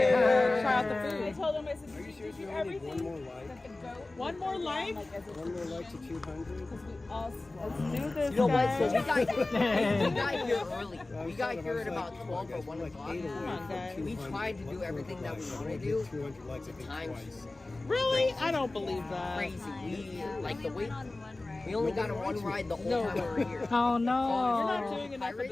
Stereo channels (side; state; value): right; quieter; 3.0 dB